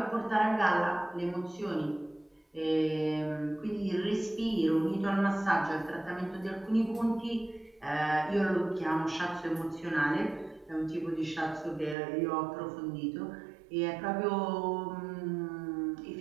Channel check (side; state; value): left; drops out; at 12.0 s